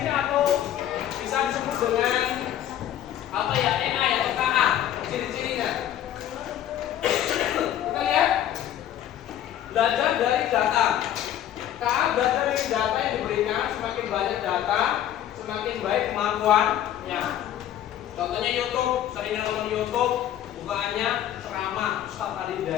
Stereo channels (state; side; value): quieter; right; 11.4 dB